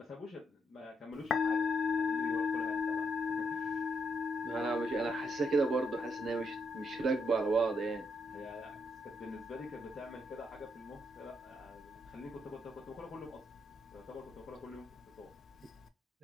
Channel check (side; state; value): both; normal; correlation 0.79